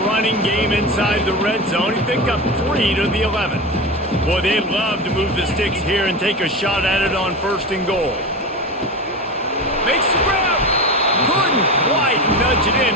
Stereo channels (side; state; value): both; normal; correlation 0.24